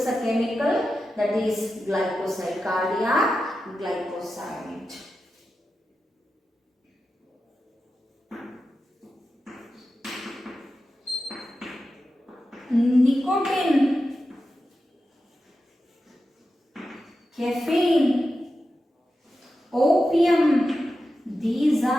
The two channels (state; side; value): normal; both; correlation 0.91